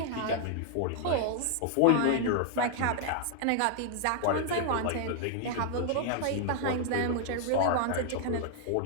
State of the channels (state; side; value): different; both; correlation 0.00